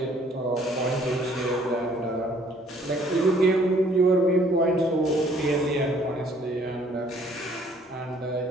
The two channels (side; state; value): both; normal; correlation 0.60